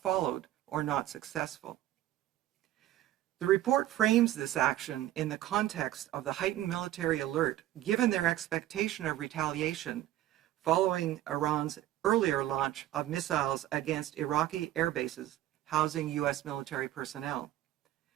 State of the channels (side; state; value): left; quieter; 13.9 dB